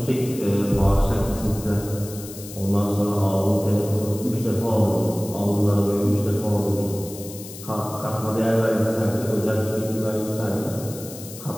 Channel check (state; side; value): noise; left; hiss, 14 dB below the sound